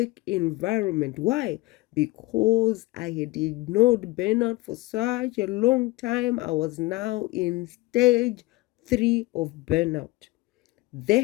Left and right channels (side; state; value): right; quieter; 20.5 dB